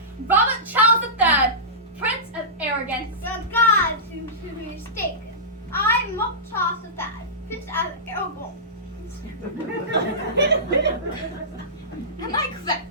Robert Charles III, Prince of Arrogance. The gods seem to be mistaken. I'm Robert Charles III, Prince of Aragon. Am I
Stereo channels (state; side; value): normal; both; correlation -0.19